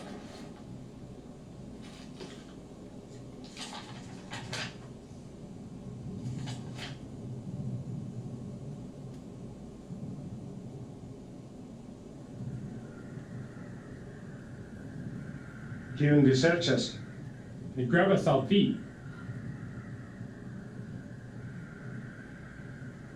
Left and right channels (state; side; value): identical; both; correlation 1.00